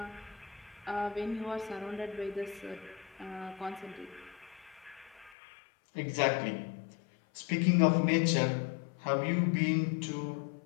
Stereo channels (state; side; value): drops out; right; at 5.3 s